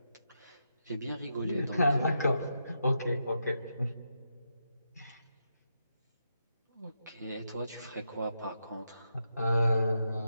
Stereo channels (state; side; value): inverted; both; correlation -0.84